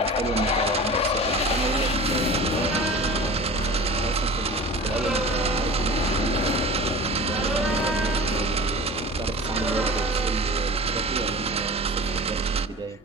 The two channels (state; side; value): normal; both; correlation 0.36